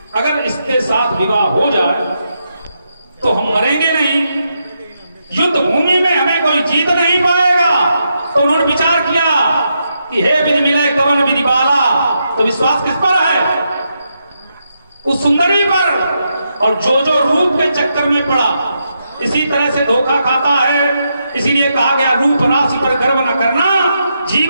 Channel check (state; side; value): inverted; both; correlation -0.82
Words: अगर इसके साथ विवाह हो जाए तो हम मरेंगे नहीं, युद्ध भूमि में हमें कोई जीत नहीं पाएगा। तो उन्होंने विचार किया कि हे विधि मिले कवन विधि बाला। तो विश्वास किस पर है? उस सुंदरी पर। और जो जो रूप के चक्कर में पड़ा, इसी तरह से धोखा खाता है। इसीलिए कहा गया रूप राशि पर गर्व न करना,